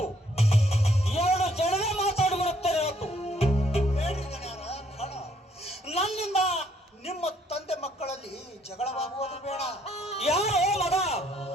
ಎರಡು ಜನರೇ ಮಾತಾಡಿಬಿಡುತ್ತೇನೆ ಹೊತ್ತು. ಬೇಡ್ರಿ ದಣಿಯರ, ಬೇಡ. ನನ್ನಿಂದ ನಿಮ್ಮ ತಂದೆ ಮಕ್ಕಳಲ್ಲಿ ಜಗಳವಾಗುವುದು ಬೇಡ. ಯಾರೋ ಮಗ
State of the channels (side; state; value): both; normal; correlation 0.67